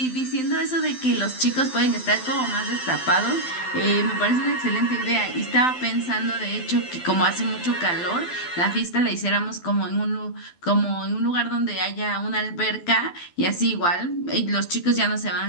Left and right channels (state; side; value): late; right; 12 ms